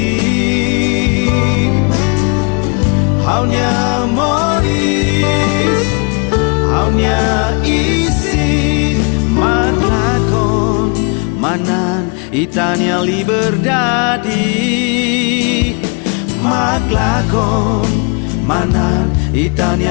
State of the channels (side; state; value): right; quieter; 35.1 dB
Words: Haunya moris Haunya isi Matlakon Manan itania liberdade Matlakon Manan